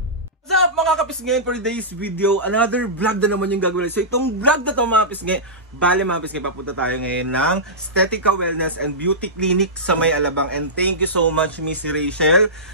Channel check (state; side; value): normal; both; correlation -0.16